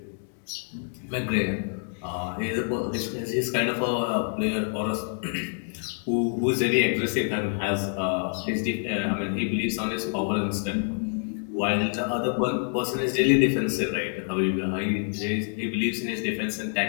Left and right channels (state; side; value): silent; right; 60 dB below the other